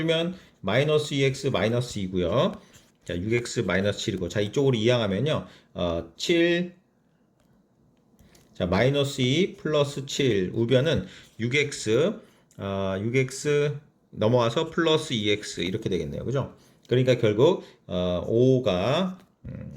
마이너스 2x 마이너스 2고요. 자, 6x 마이너스 7이고 자, 이쪽으로 이항하면요. 7 자, 마이너스 2 플러스 7 우변은 6x 넘어와서 플러스 2x 이렇게 되겠네요. 그죠? 그러니까 결국 5가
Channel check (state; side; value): identical; both; correlation 1.00